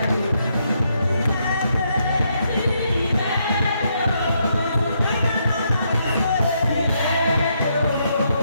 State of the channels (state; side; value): inverted; both; correlation -0.77